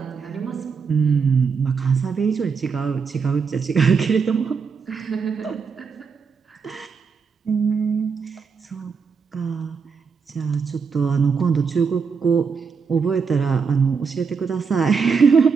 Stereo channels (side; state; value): left; quieter; 5.6 dB